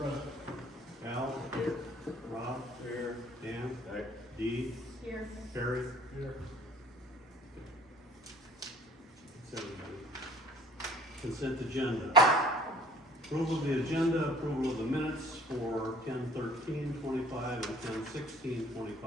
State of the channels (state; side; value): normal; both; correlation 0.52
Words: Al. Rob. Here. Dan. Dee. Here. Perry. Here. That's everybody. Consent agenda. Approval of the agenda, approval of the minutes for 10/13/25 and